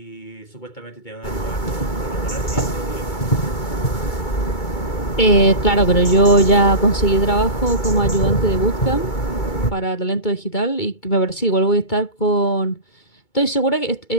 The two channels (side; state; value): right; late; 2.2 ms